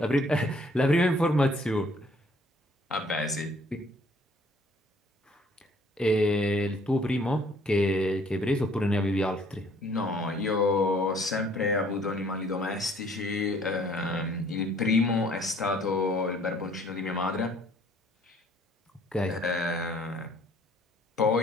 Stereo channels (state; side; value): normal; both; correlation 0.59